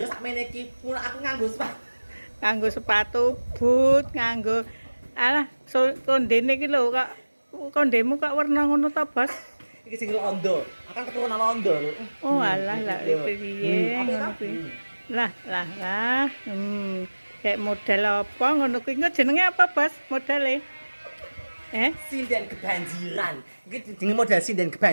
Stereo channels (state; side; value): inverted; both; correlation -1.00